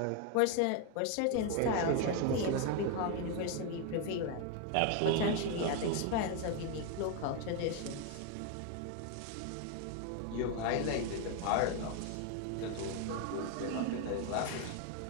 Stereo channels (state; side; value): different; both; correlation 0.01